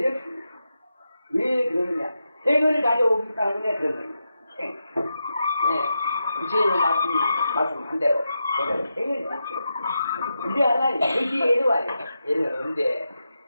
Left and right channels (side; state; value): both; inverted; correlation -0.88